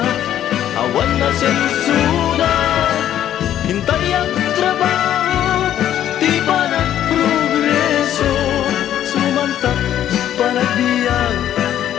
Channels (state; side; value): quieter; right; 11.3 dB